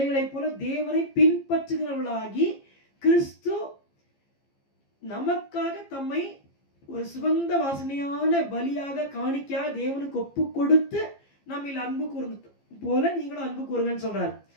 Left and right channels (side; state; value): right; late; 15 ms